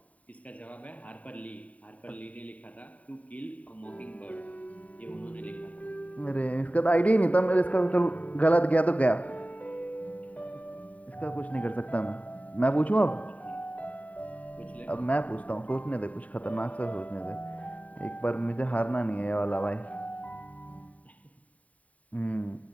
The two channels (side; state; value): right; late; 0.069 ms